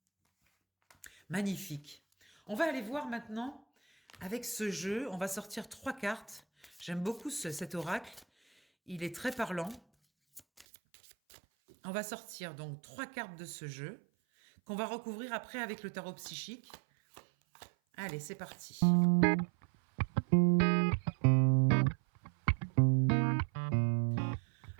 Magnifique. On va aller voir maintenant. Avec ce jeu, on va sortir 3 cartes. J'aime beaucoup cet oracle. Il est très parlant. On va sortir donc 3 cartes de ce jeu qu'on va recouvrir après avec le tarot psychique. Allez, c'est parti.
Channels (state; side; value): drops out; left; at 10.7 s